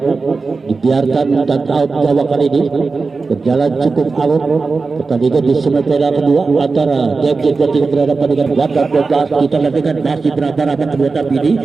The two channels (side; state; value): left; quieter; 4.2 dB